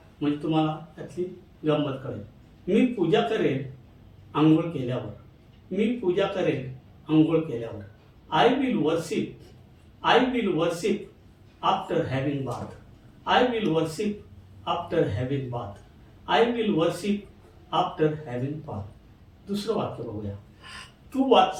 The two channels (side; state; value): both; identical; correlation 1.00